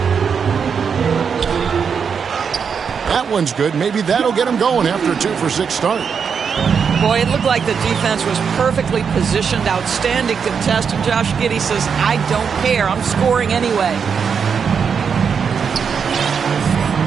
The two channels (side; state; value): left; quieter; 6.5 dB